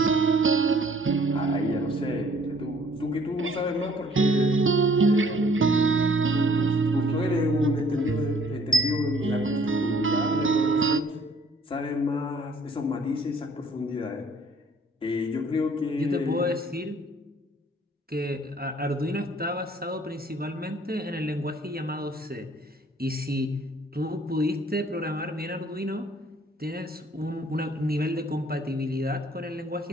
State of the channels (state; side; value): normal; both; correlation 0.58